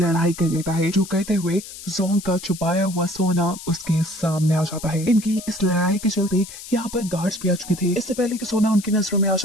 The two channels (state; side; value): noise; left; hiss, 13 dB below the sound